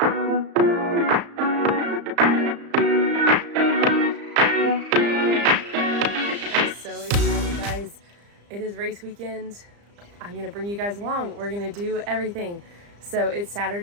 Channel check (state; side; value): late; left; 35 ms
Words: so excited, guys. It is race weekend. I'm gonna bring you guys along. We're gonna do everything. So it's